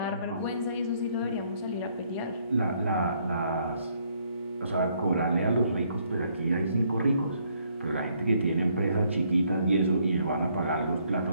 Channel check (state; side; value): inverted; both; correlation -0.69